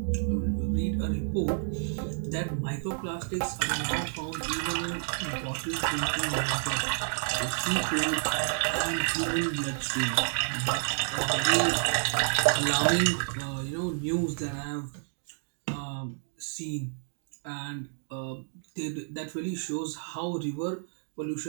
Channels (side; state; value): left; silent; digital silence